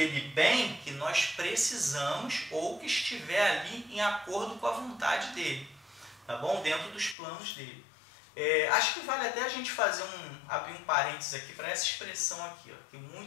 bem que nós precisamos ou que estiver ali em acordo com a vontade dele, tá bom? Dentro dos planos dele. Acho que vale até a gente abrir um parênteses aqui para essa expressão aqui, ó, que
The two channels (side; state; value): right; drops out; at 7.2 s